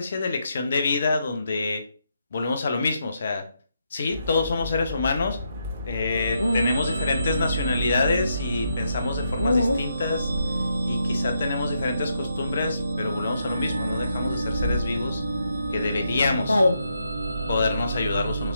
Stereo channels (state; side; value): inverted; both; correlation -0.80